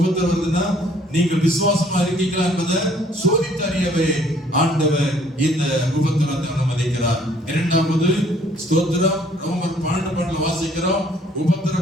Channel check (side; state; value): both; normal; correlation 0.60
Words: வருதுன்னா நீங்கள் விசுவாசமா இருக்கீங்களா என்பதை சோதித்து அறியவே ஆண்டவர் இந்த உபத்திரத்தை அனுமதிக்கிறார். இரண்டாவது ஸ்தோத்திரம். ரோமர் 12:12 வாசிக்கிறோம்.